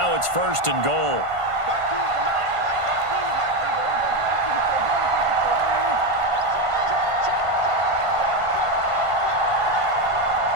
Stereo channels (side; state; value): left; late; 1.5 ms